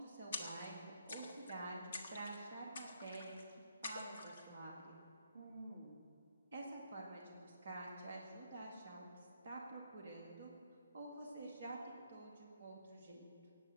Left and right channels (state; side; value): inverted; both; correlation -0.74